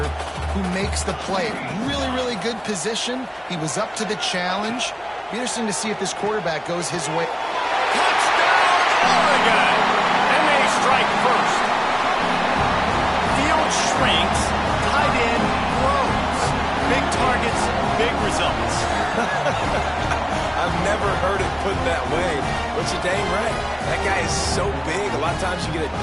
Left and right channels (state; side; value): identical; both; correlation 1.00